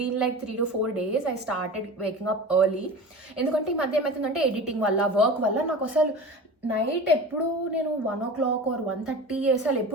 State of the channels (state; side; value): normal; both; correlation 0.33